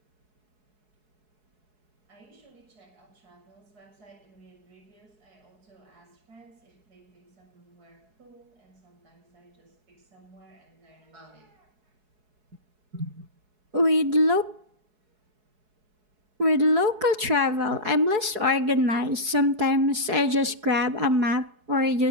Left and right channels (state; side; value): late; left; 4.7 ms